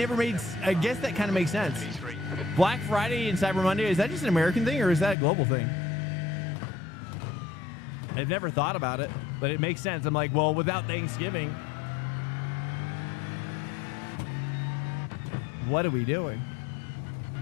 made. I guess that kind of makes sense. Black Friday and Cyber Monday, is that just an American thing or is that a global thing? I've never thought about it, but it makes sense. I'm like, well, without Thanksgiving, what are we doing?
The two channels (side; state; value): right; drops out; at 5.2 s